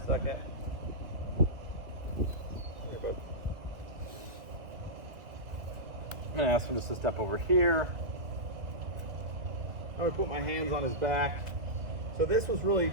second. Here, bud. I'm gonna ask him just to step over here. I'm gonna put my hands on his back. So this was really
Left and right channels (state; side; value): late; left; 2.2 ms